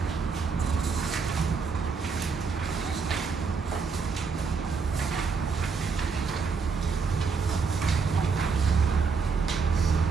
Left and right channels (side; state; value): left; quieter; 5.1 dB